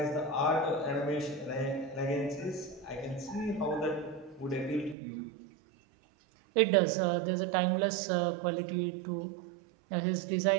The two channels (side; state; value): left; drops out; at 5.0 s